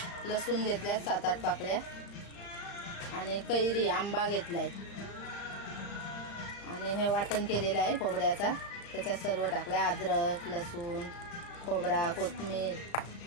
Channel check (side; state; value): right; late; 35 ms